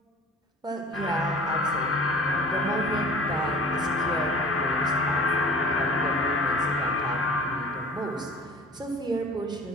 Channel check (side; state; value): both; normal; correlation 0.44